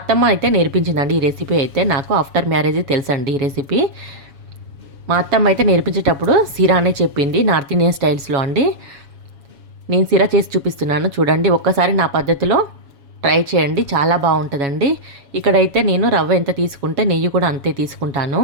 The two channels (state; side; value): late; left; 7.2 ms